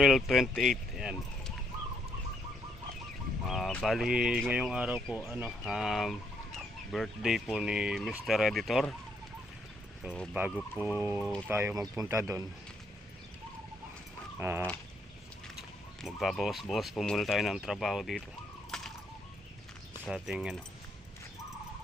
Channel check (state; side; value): normal; both; correlation 0.74